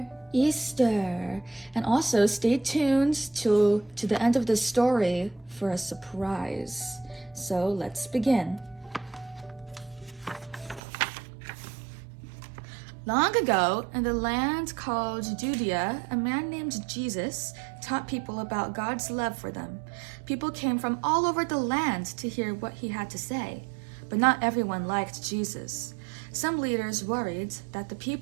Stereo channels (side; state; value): left; drops out; at 10.8 s